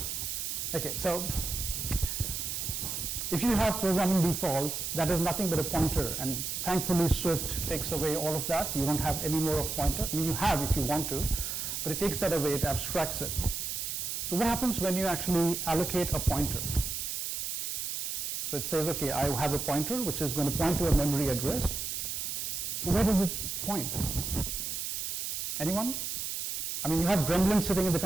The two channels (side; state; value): right; noise; hiss, 3 dB below the sound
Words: Okay, so if you have programming defaults, that is nothing but a pointer, and thankfully Swift takes away all of that. You don't have any more of pointer. I mean, you have if you want to, but it takes that away, it abstracts it. So what happens when you actually allocate a pointer? So it says, okay, I have a pointer which is going to point to a memory address. So where does it point? Anyone? I mean, you have gremlins sitting in the